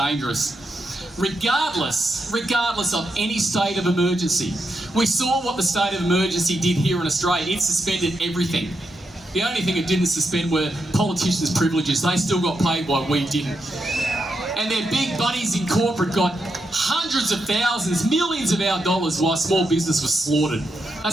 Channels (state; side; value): normal; both; correlation 0.83